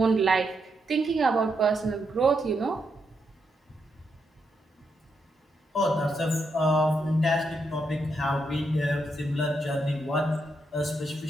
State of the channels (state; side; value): normal; both; correlation 0.81